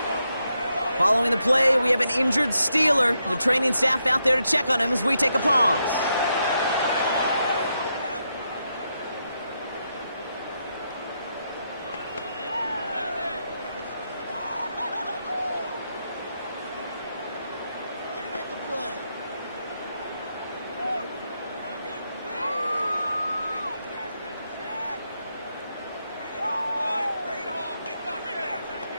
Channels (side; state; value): both; inverted; correlation -0.82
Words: Following the play, we have an injured Steeler. The training staff out there to check on him as we take a pause.